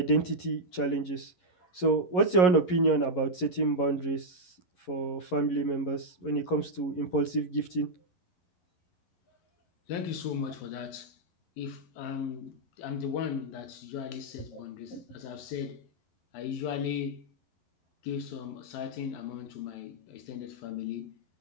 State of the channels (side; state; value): right; late; 11 ms